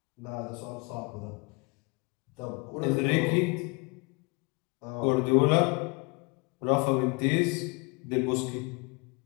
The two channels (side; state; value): right; quieter; 29.8 dB